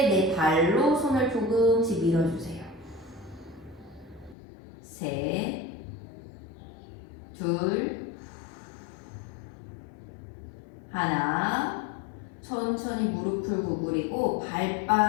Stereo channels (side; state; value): right; drops out; at 4.4 s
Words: 내 발로 손을 조금씩 밀어주세요. 셋, 둘, 하나. 천천히 무릎을 구부리고